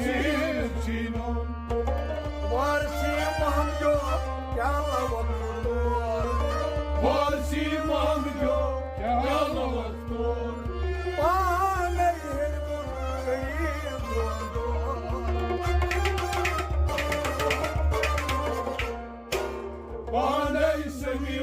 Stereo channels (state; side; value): identical; both; correlation 1.00